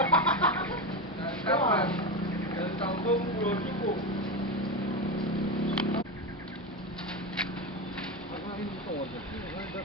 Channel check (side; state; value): both; normal; correlation 0.18